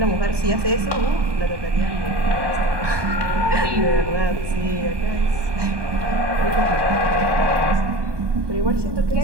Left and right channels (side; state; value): left; late; 1.2 ms